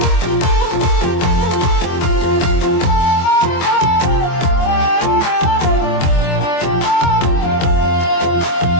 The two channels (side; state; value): right; late; 24 ms